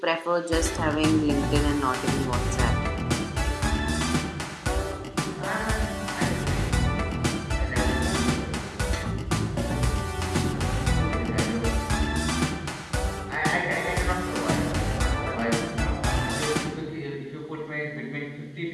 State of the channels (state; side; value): identical; both; correlation 1.00